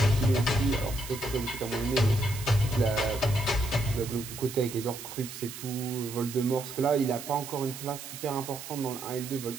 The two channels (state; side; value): noise; right; hiss, 11 dB below the sound